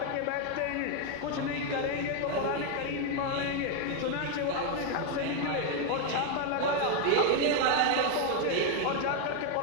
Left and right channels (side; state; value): both; different; correlation 0.01